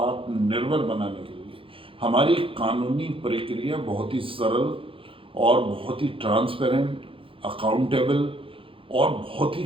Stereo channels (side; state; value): left; late; 0.26 ms